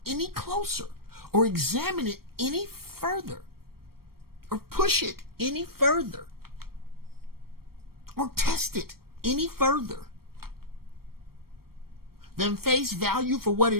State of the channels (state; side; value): late; left; 0.94 ms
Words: any closer or examine it any further or push it any further or test it any further than face value for what